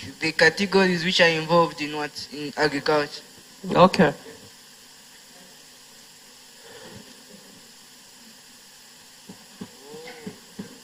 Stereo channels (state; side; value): identical; both; correlation 1.00